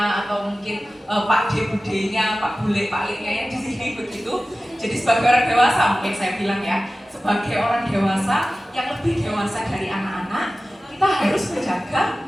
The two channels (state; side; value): normal; both; correlation 0.96